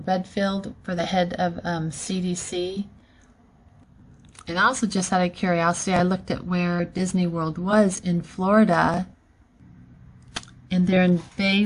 Redfield, for the head of CDC. And also, just out of curiosity, I looked at where Disney World was in Florida, and they're in Bay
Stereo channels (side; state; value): both; identical; correlation 1.00